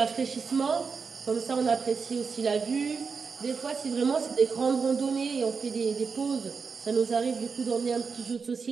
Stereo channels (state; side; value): quieter; left; 5.3 dB